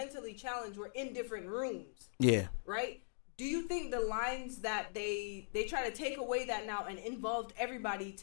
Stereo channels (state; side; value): silent; right; digital silence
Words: challenged, were in different rooms. Yeah. Right? Do you think the lines that they try to take away that now and involved everybody